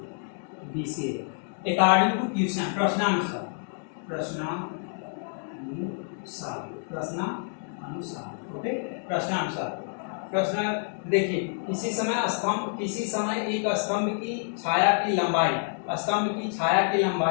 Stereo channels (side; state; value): right; silent; 59 dB below the other